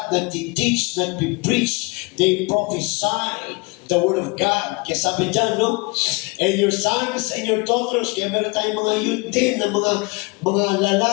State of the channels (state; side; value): quieter; right; 27.9 dB